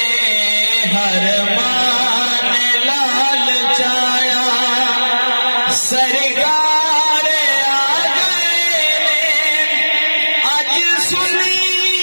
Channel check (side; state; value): both; inverted; correlation -1.00